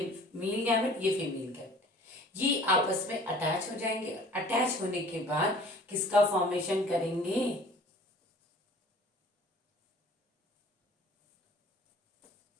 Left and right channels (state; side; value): normal; both; correlation 0.48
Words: मेल गैमेट, ये फीमेल गैमेट। ये आपस में अटैच हो जाएंगे। अटैच होने के बाद किसका फॉर्मेशन करेंगे?